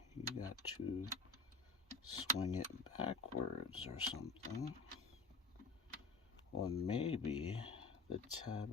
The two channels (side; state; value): right; quieter; 3.8 dB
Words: you got to swing it backwards or something. Or maybe the